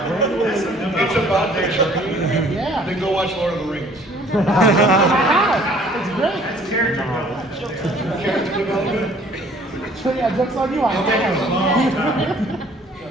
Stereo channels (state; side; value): normal; both; correlation 0.56